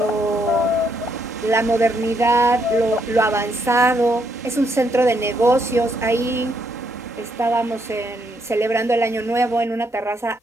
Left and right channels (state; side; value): normal; both; correlation 0.75